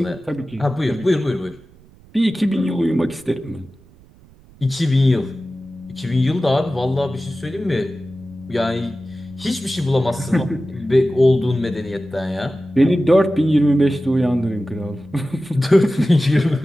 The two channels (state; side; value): noise; right; rumble, 26 dB below the sound